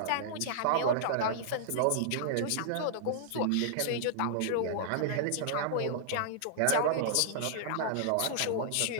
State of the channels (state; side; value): different; both; correlation -0.01